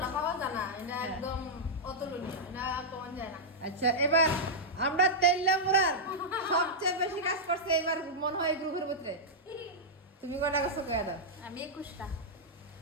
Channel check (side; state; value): both; normal; correlation -0.08